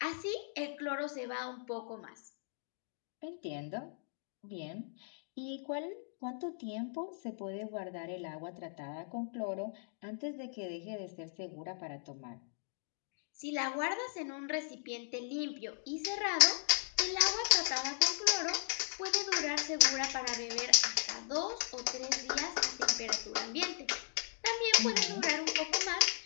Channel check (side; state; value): right; silent; digital silence